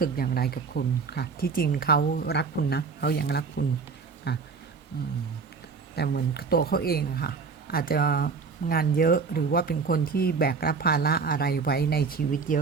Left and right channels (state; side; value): quieter; left; 5.1 dB